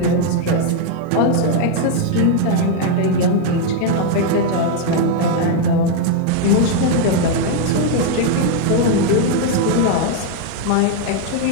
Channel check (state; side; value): different; both; correlation 0.00